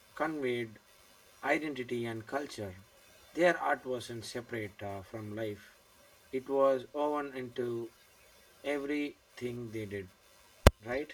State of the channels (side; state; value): both; identical; correlation 1.00